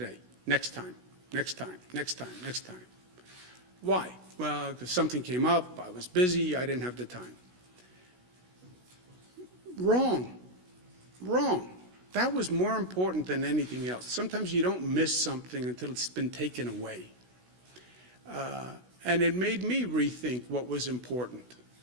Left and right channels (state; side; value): late; left; 16 ms